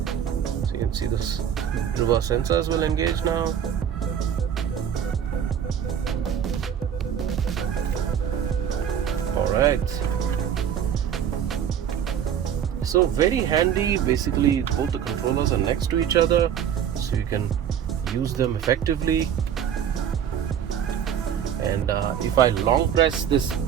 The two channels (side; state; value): left; quieter; 8.9 dB